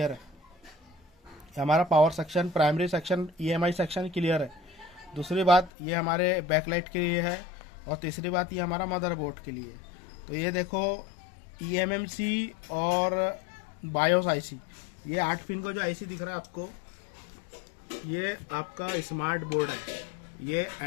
है। हमारा power section, primary section, EMI section clear है। दूसरी बात ये हमारे बैकलाइट के लिए है, और तीसरी बात ये हमारा मदरबोर्ड के लिए। तो ये देखो ईएमएमसी और बायोस आईसी, ये 8 पिन को जो आईसी दिख रहा है आपको, ये आपका स्मार्ट बोर्ड है, ये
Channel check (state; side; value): drops out; right; at 5.7 s